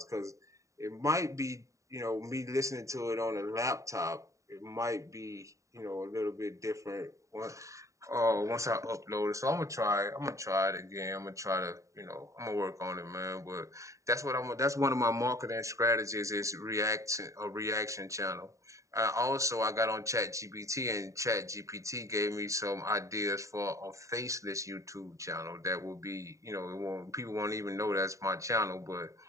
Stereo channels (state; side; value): late; left; 0.15 ms